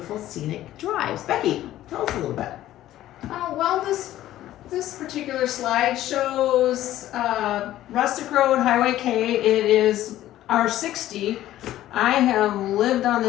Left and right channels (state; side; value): quieter; right; 13.8 dB